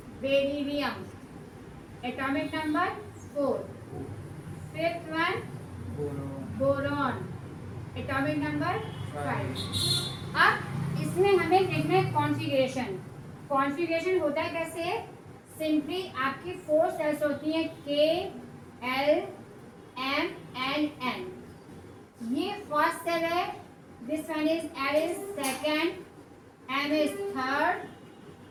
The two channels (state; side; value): identical; both; correlation 1.00